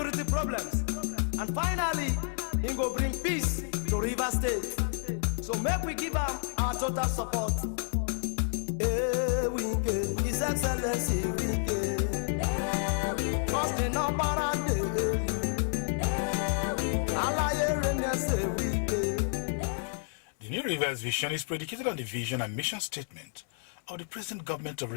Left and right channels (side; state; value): right; silent; 58 dB below the other